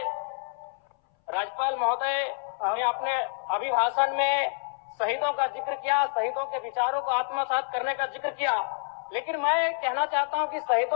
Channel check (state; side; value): silent; right; 59 dB below the other